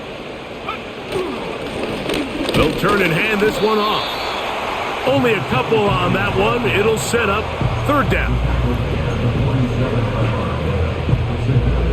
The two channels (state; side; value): identical; both; correlation 1.00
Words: They'll turn and hand this one off. Only a couple on that one. It'll set up 3rd down.